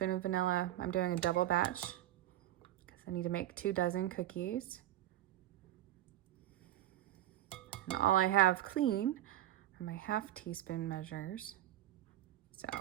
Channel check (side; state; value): left; quieter; 13.5 dB